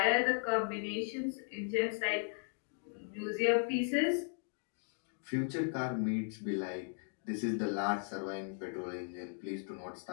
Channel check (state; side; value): silent; right; 53 dB below the other